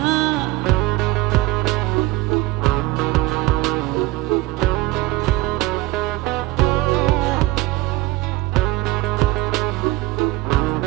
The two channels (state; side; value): quieter; left; 18.2 dB